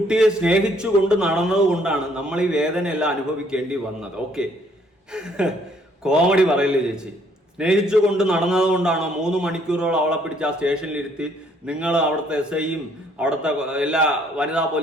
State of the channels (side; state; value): both; normal; correlation 0.65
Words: സ്നേഹിച്ചു കൊണ്ട് നടന്നത് കൊണ്ടാണ് നമ്മൾ ഈ വേദനയെല്ലാം അനുഭവിക്കേണ്ടി വന്നത്. ഓക്കെ, കോമഡി പറയില്ലേ ചേച്ചി. സ്നേഹിച്ചു കൊണ്ട് നടന്നത് കൊണ്ടാണോ 3 മണിക്കൂറോളം അവളെ പിടിച്ച് ആ സ്റ്റേഷനിലിരുത്തി നിങ്ങൾ അവിടുത്തെ എസ് ഐയും അവിടുത്തെ എല്ലാ വനിതാ